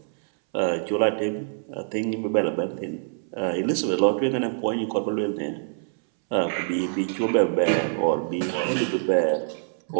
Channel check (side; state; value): left; silent; 62 dB below the other